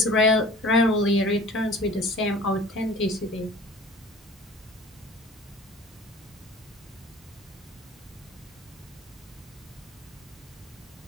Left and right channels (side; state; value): both; normal; correlation 0.44